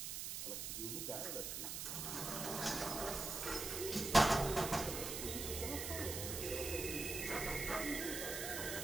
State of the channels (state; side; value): noise; right; hiss, 4 dB below the sound